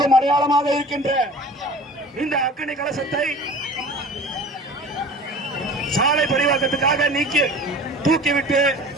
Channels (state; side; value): normal; both; correlation 0.41